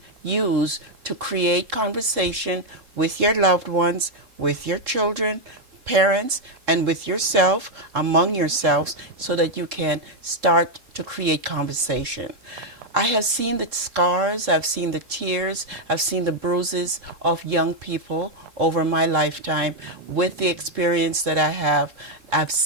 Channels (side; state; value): left; late; 3.7 ms